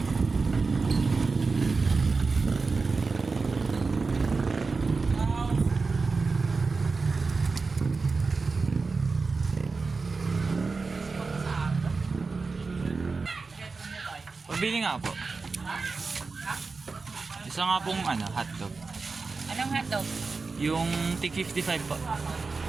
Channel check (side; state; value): left; quieter; 4.2 dB